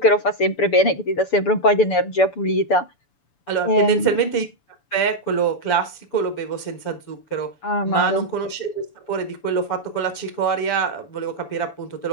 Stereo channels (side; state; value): right; late; 7.0 ms